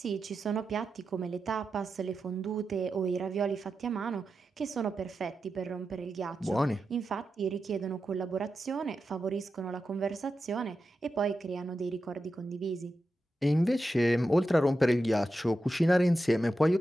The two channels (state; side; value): normal; both; correlation 0.90